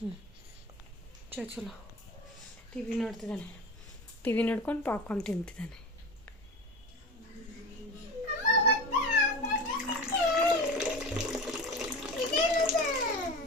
ಚಲೋ ಟಿವಿ ನೋಡ್ತಿದ್ದಾನೆ. ಟಿವಿ ನೋಡ್ಕೊಂಡು ಪಾಪ್ಕಾರ್ನ್ ತಿಂತಿದ್ದಾನೆ.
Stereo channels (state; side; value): normal; both; correlation 0.30